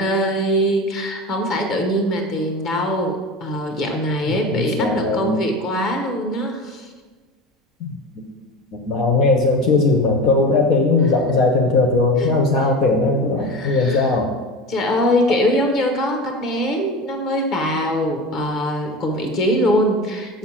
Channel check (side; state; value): both; normal; correlation 0.30